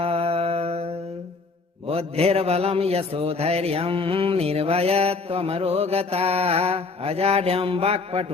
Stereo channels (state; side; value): quieter; right; 4.0 dB